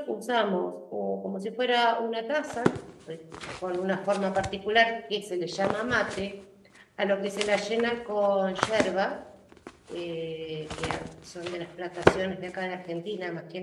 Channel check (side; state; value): both; identical; correlation 1.00